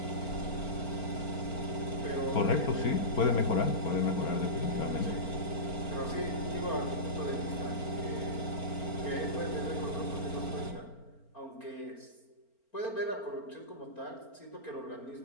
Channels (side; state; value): right; late; 4.4 ms